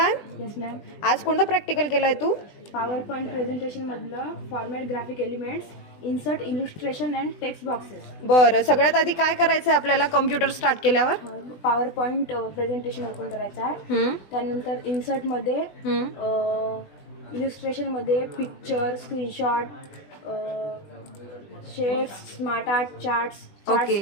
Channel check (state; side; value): late; right; 20 ms